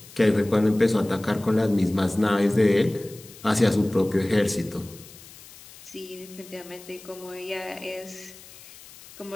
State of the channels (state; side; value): noise; left; hiss, 20 dB below the sound